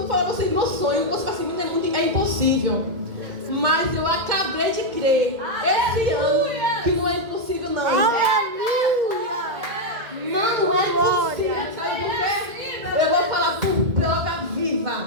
falar pra vocês meu sonho, você assim, é impossível. Mas eu acabei de crer esse ano que não é impossível, não. Aleluia. Não é impossível. Sabe por quê? Eu vou falar por prova viva.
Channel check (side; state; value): left; late; 1.8 ms